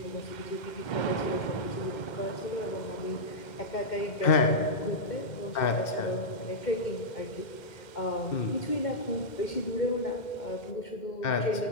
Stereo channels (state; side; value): late; right; 2.1 ms